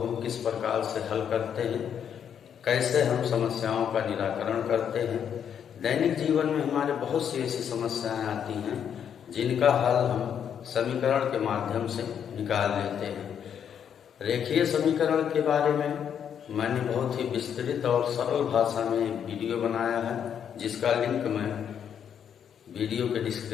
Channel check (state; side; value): quieter; right; 8.4 dB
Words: किस प्रकार से हल करते हैं, कैसे हम समस्याओं का निराकरण करते हैं। दैनिक जीवन में हमारे बहुत सी ऐसी समस्याएं आती हैं जिनका हल हम समीकरण के माध्यम से निकाल लेते हैं। रेखीय समीकरण के बारे में मैंने बहुत ही विस्तृत और सरल भाषा में एक वीडियो बनाया है, जिसका लिंक मैं वीडियो के